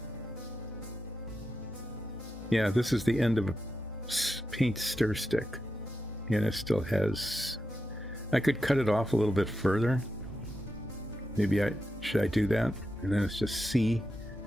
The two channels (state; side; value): normal; both; correlation 0.88